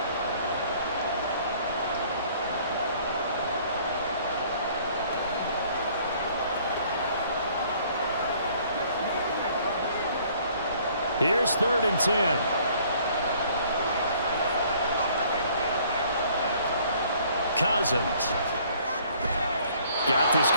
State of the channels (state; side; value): inverted; both; correlation -0.58